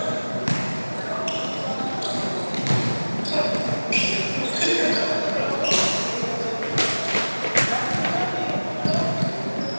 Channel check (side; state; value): both; inverted; correlation -1.00